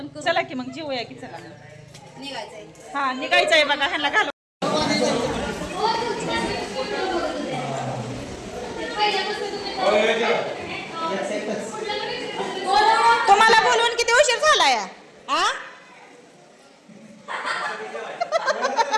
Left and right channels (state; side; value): identical; both; correlation 1.00